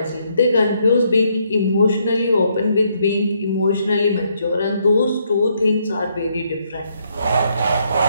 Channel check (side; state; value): both; inverted; correlation -0.74